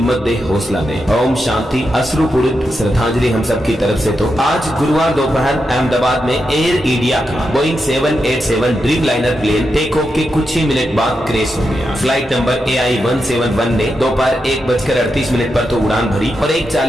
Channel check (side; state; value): both; normal; correlation 0.86